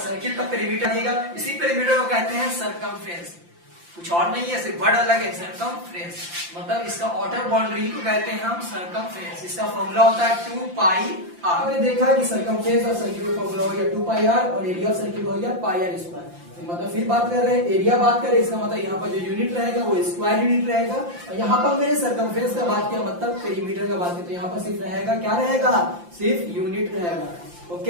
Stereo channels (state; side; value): late; left; 5.8 ms